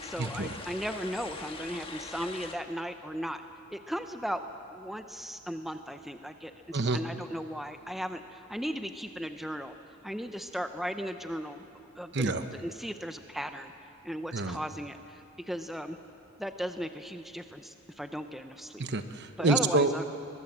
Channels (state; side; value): normal; both; correlation 0.53